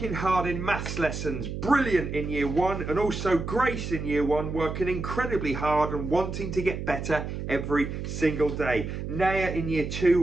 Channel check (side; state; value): right; noise; hum, 6 dB below the sound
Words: hard in maths lessons, brilliant in year 1, and also Grace in year 1 working incredibly hard and wanting to get better every single day. Naya in year